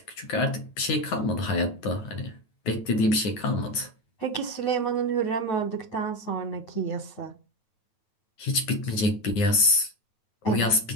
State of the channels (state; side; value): late; right; 9.7 ms